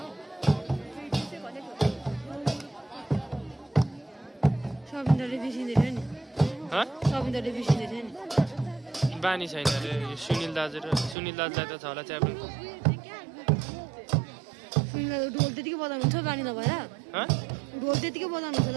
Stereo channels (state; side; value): drops out; left; at 11.2 s